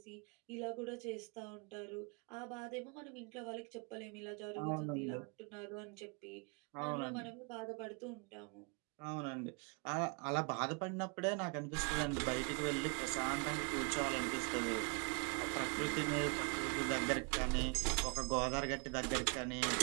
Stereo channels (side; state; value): left; quieter; 32.8 dB